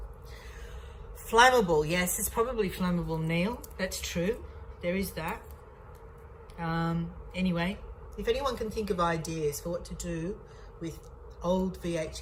Flammable, yes, it's probably flammable, Neil. That's true. There is that. Anyway, if anyone can think of ideas for what to do with old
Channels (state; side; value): identical; both; correlation 1.00